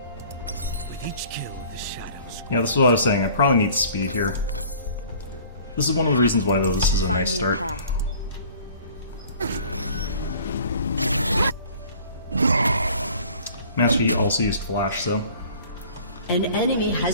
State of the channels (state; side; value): inverted; both; correlation -0.49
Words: With each kill, the shadows. Yeah, this is what I was saying. I probably need speed here. This is one of the reasons why, though, this is a nice start. Master Yi also used Flash, so An enemy